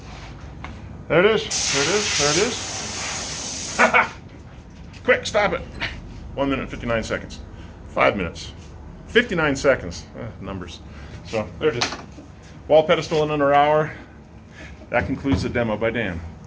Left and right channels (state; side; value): identical; both; correlation 1.00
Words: There it is, there it is, there it is. Quick, stop it. 1 minute and 59 seconds. 5 minutes. 59 seconds. Numbers. So, there it is. Wall pedestal in under an hour. That concludes the demo by Dan.